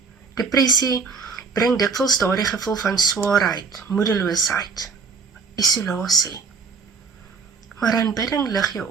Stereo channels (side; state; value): left; quieter; 5.2 dB